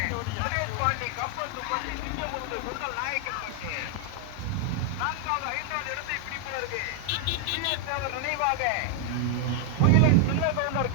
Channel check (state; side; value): different; both; correlation 0.00